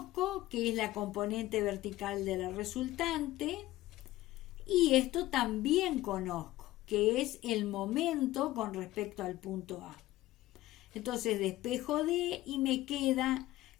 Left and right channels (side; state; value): right; quieter; 16.5 dB